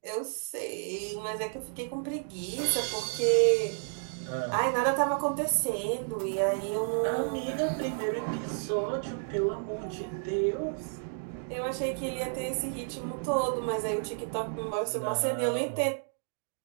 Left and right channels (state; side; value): silent; left; digital silence